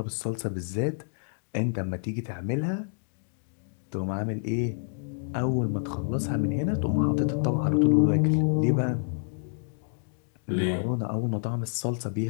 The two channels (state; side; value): silent; right; digital silence